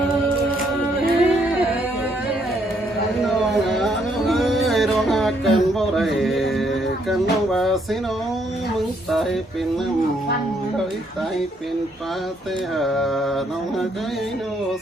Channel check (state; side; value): normal; both; correlation 0.71